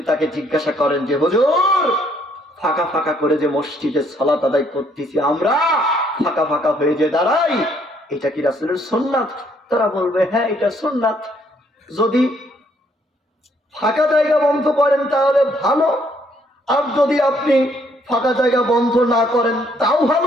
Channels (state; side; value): normal; both; correlation 0.67